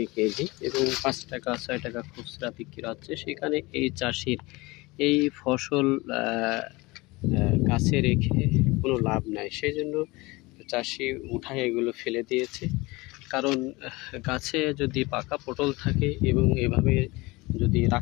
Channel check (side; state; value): right; quieter; 22.9 dB